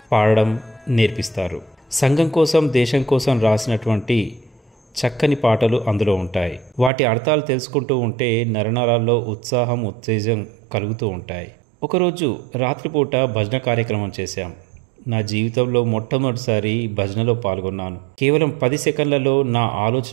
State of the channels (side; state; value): left; drops out; at 6.9 s